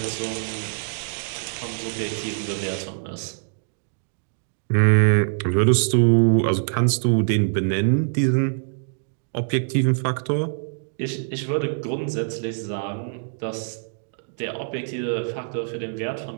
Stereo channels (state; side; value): silent; left; digital silence